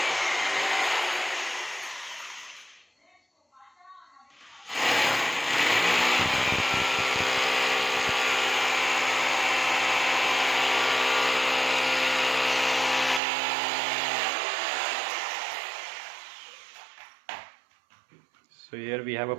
So here we have a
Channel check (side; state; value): left; drops out; at 13.2 s